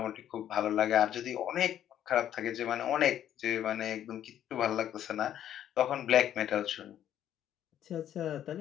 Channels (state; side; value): quieter; right; 10.9 dB